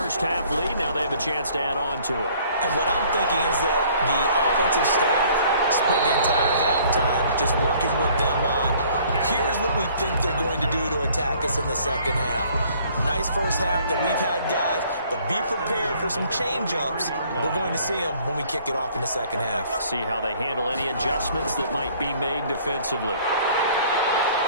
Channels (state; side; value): inverted; both; correlation -0.57